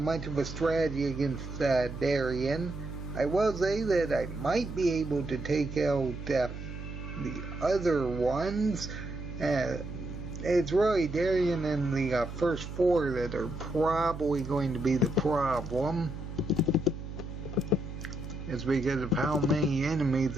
of a strategy against Darien. I will say that I might be able to take out the other ones. It's really Darien and the first 4 that are probably going to be the problem. It's because of how many enemies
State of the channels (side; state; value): right; noise; hum, 9 dB below the sound